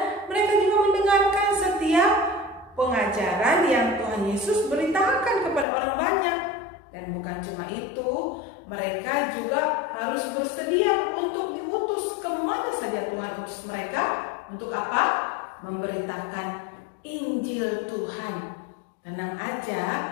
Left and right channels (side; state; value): right; drops out; at 5.7 s